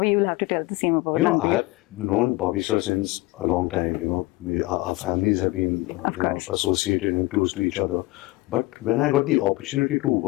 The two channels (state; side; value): quieter; right; 21.3 dB